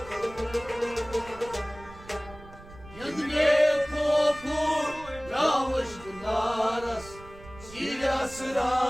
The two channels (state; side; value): noise; right; rumble, 18 dB below the sound